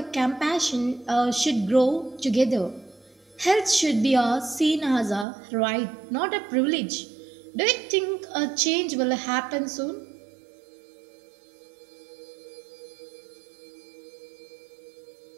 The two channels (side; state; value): left; drops out; at 5.2 s